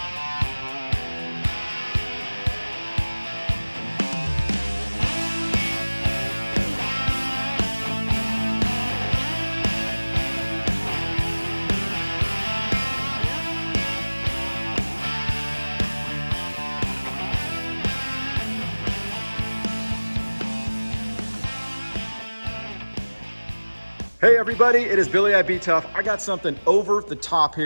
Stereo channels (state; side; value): inverted; both; correlation -1.00